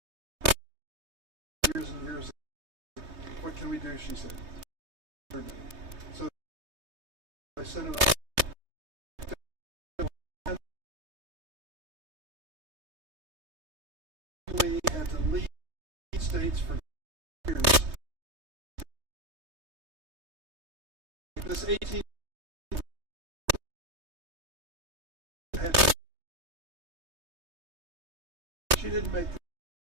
years and years. What can we do, she said. So I sent it had to leave states for years. This 18 she didn't make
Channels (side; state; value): left; late; 3.2 ms